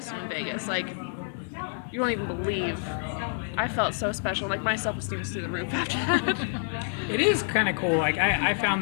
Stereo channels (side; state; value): right; silent; 59 dB below the other